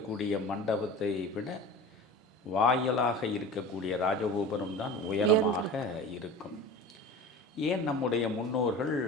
மண்டபத்தை விட வாயிலாக இருக்கக்கூடிய ராஜகோபுரம் தான் உயரமாக இருக்கும். ஏன் நம்முடைய முன்னோர்கள்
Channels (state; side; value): normal; both; correlation 0.35